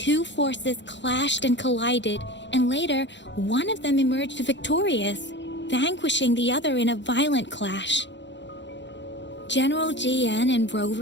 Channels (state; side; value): late; right; 0.52 ms